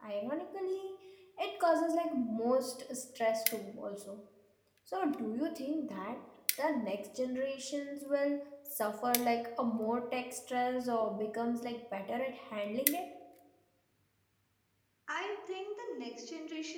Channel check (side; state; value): both; identical; correlation 1.00